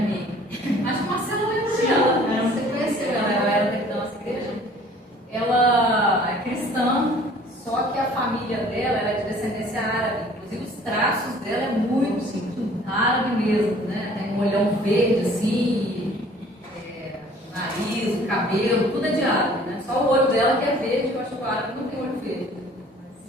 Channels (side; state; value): both; normal; correlation 0.53